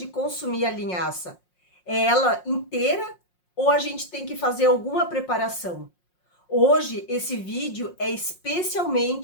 consumir a linhaça? É ela inteira ou a gente tem que fazer alguma preparação? Hoje esse vídeo é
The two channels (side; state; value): right; late; 5.5 ms